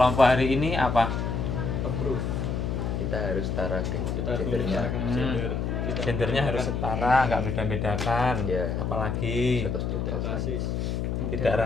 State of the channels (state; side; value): noise; left; hum, 1 dB below the sound